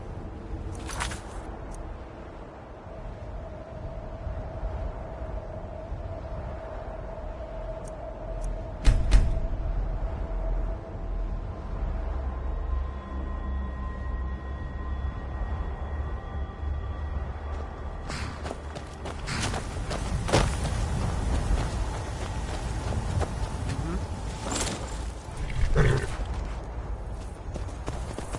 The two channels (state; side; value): identical; both; correlation 1.00